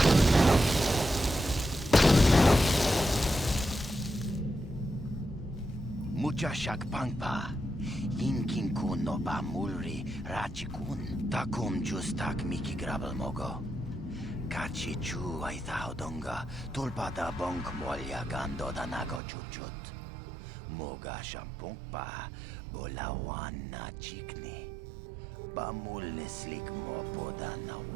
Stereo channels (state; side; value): drops out; left; at 19.2 s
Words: Mucha shak pangpa. Inkin kun no ba mulri rachi kun. Takum justak miki grabel mogo. Kachi chu ay thaudonga. Tulpada bonk molya gando danago chuchut. Moga shampong pa. Bolawan na chikni. Bamulislik mo poda na